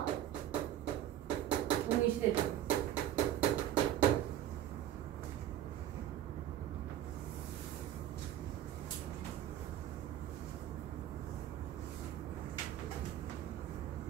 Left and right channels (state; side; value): quieter; left; 12.0 dB